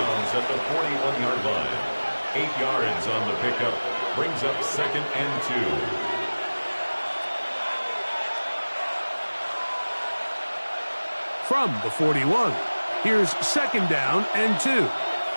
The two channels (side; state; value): both; inverted; correlation -1.00